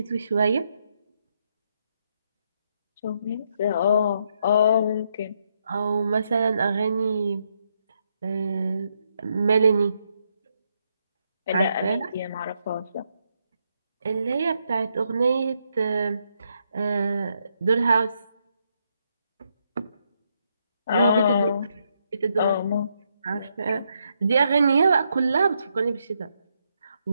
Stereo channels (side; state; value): both; inverted; correlation -0.78